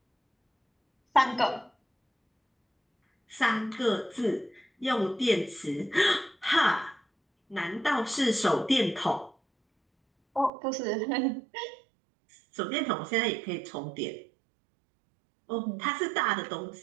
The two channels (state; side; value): drops out; left; at 10.5 s